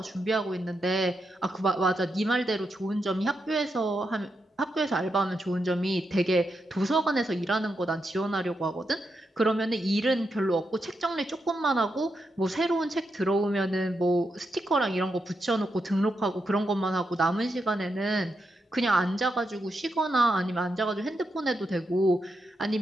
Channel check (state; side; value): normal; both; correlation 0.84